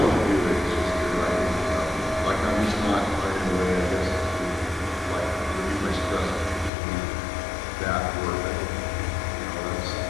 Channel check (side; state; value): right; drops out; at 6.7 s